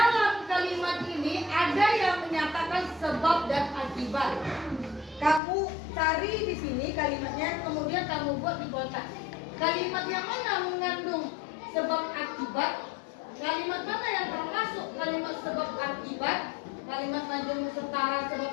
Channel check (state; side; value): drops out; right; at 5.4 s